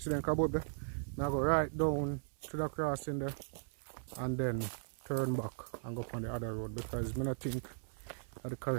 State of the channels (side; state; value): left; silent; 53 dB below the other